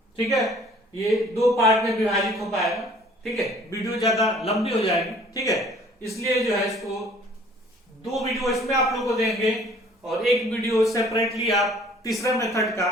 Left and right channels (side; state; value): both; normal; correlation 0.54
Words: ठीक है, ये दो पार्ट में विभाजित हो पाएगा। ठीक है, वीडियो ज्यादा लंबी हो जाएगी। ठीक है, इसलिए जो है इसको दो वीडियो इसमें आप लोग को देंगे और एक वीडियो सेपरेटली आप तीसरे मेथड का